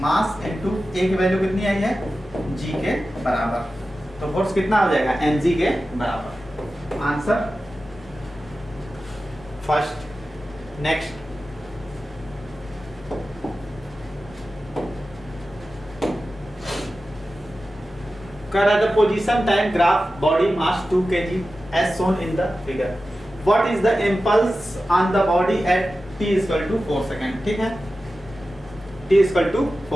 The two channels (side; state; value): both; normal; correlation 0.94